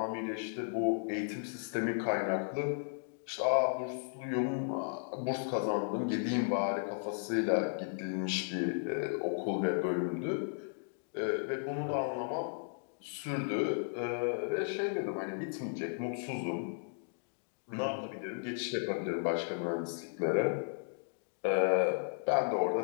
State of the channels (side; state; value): right; silent; digital silence